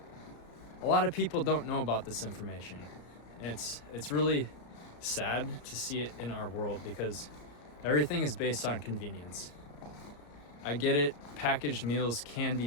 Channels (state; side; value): late; right; 34 ms